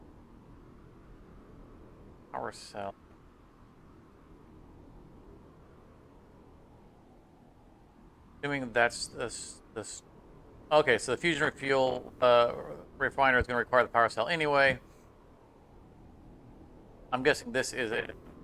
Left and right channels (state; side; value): identical; both; correlation 1.00